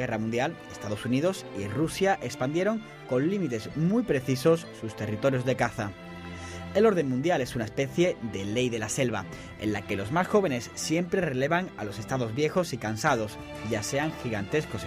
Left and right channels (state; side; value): identical; both; correlation 1.00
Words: Mundial, Estados Unidos y Rusia expandieron con límites muy precisos sus territorios de caza. El orden mundial es una especie de ley de la selva, en la que los más jóvenes siempre relevan a los estados viejos y cansados, ya sean gigantescos